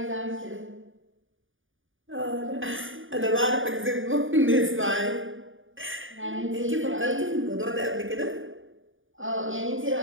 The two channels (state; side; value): late; left; 0.57 ms